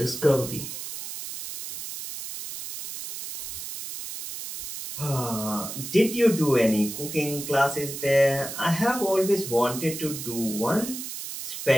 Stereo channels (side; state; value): right; noise; hiss, 8 dB below the sound